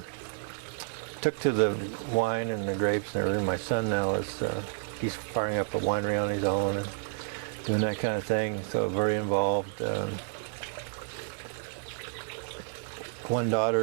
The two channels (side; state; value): left; silent; 58 dB below the other